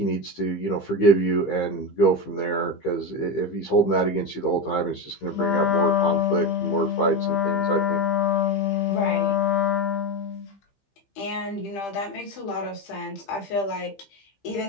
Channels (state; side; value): late; right; 15 ms